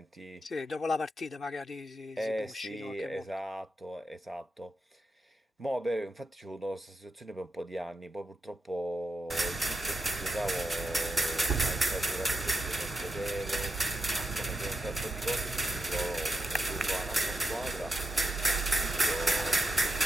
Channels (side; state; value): both; normal; correlation 0.86